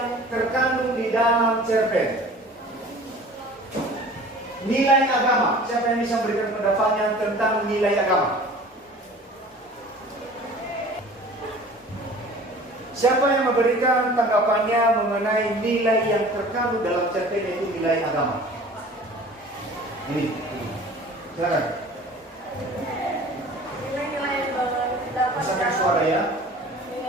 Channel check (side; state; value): both; normal; correlation 0.45